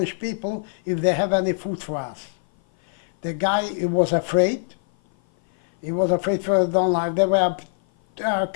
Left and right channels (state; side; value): silent; right; 56 dB below the other